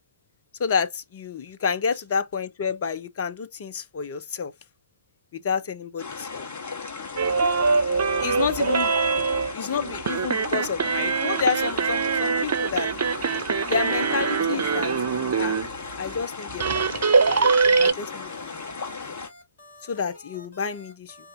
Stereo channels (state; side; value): inverted; both; correlation -0.63